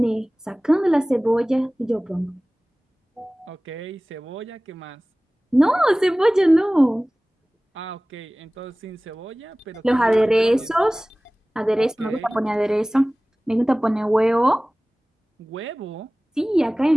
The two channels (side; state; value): both; normal; correlation 0.98